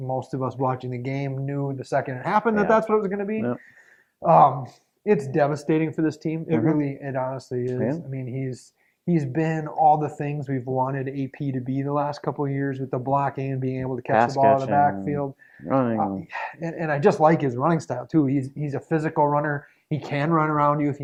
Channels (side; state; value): both; identical; correlation 1.00